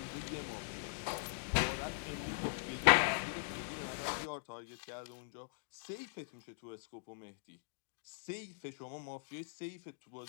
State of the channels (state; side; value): silent; right; digital silence